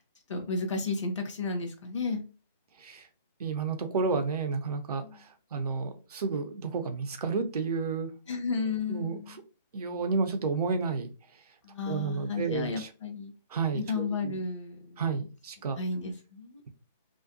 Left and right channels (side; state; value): both; inverted; correlation -0.46